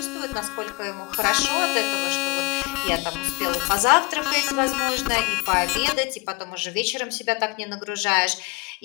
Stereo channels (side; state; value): right; quieter; 26.4 dB